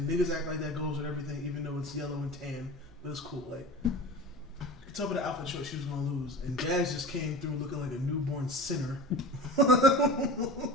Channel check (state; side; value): noise; right; hum, 29 dB below the sound